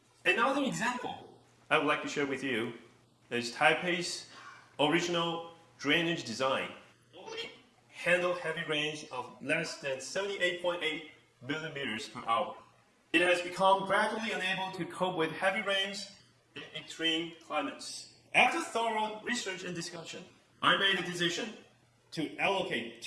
Another example I would like to share with you is Taipei's original drainage design. Only handle heavy rains of less than 78.8 millimeters per hour. It has become gradually unable to cope with heavy rains in extreme climates. After thorough research and discussion, I made a decision to allocate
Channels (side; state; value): both; identical; correlation 1.00